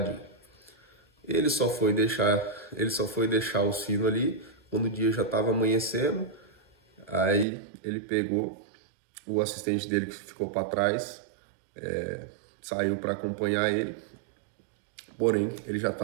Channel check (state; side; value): drops out; left; at 7.5 s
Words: Ele só foi deixar o sino ali quando o dia já estava amanhecendo. Aí ele pegou o assistente dele que ficou para trás, saiu para acompanhar ele, porém ele já